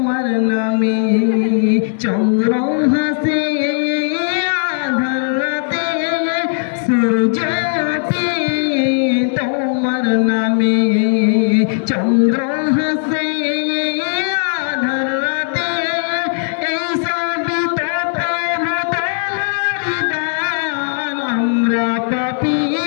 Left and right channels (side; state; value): right; silent; 68 dB below the other